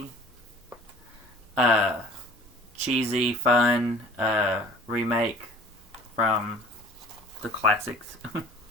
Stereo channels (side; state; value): both; normal; correlation 0.48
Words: Cheesy, fun remake from the classics.